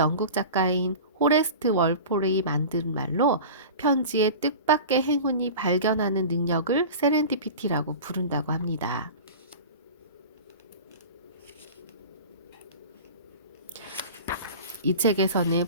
작가인 호레스트 월폴이 만든 말로 편지에 뜻밖의 행운이 발견하는 능력을 세렌디피티라고 부른다고 합니다. 이 책에서는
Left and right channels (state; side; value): inverted; both; correlation -0.34